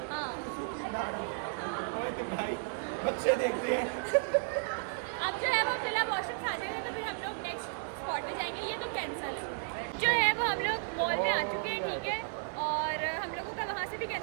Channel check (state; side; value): silent; left; 55 dB below the other